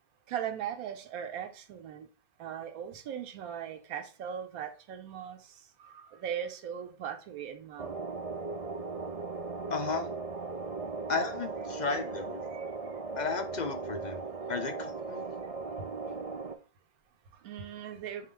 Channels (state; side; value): late; right; 2.0 ms